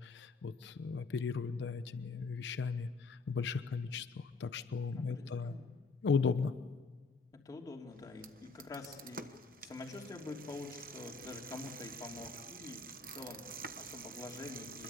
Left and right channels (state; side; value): quieter; right; 4.2 dB